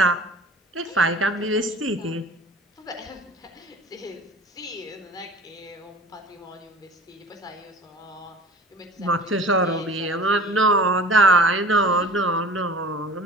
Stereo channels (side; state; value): both; normal; correlation 0.42